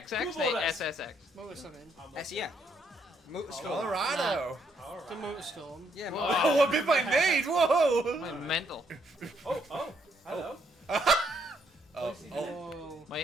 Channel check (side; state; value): both; normal; correlation 0.73